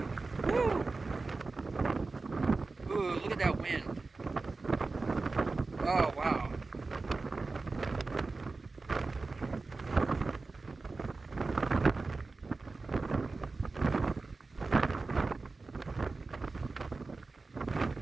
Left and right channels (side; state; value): left; quieter; 3.8 dB